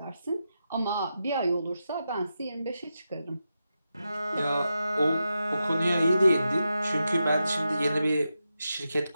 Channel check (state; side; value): inverted; both; correlation -0.88